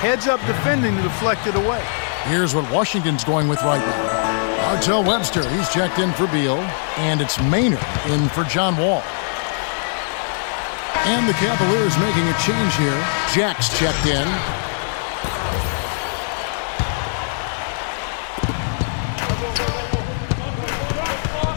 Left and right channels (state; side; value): silent; right; 65 dB below the other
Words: Heads up defending to deflect it away. Here's what Washington's going with right now. Martell Webster, he's checked in for Beal, and it's Maynard in for John Wall. And the Cavaliers making a change here. Jack's checked in.